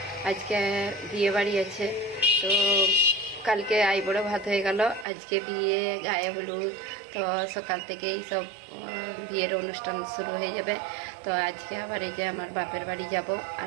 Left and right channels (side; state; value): left; drops out; at 5.1 s